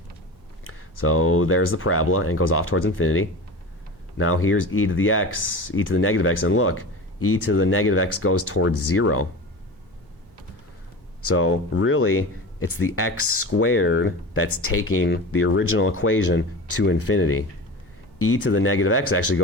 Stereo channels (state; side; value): normal; both; correlation 0.31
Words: So there's the parabola, and it goes off towards infinity. Now here's e to the x, e to the negative x, and look, e to the negative x goes towards 0. So really, it's the x squared that's taking the original equation to infinity. E to the negative x actually